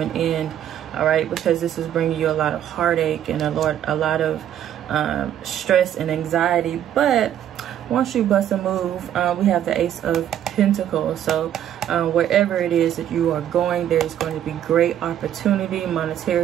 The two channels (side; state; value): left; quieter; 10.7 dB